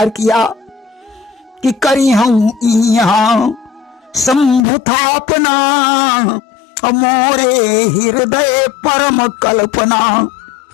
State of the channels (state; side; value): drops out; right; at 4.6 s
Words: किया कि करी हूं यहाँ शंभुथापना, मोरे हृदय परम कल्पना।